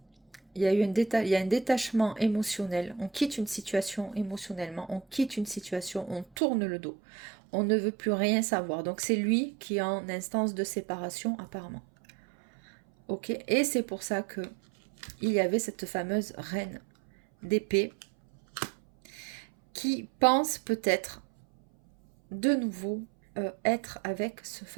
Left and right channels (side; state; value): left; drops out; at 6.2 s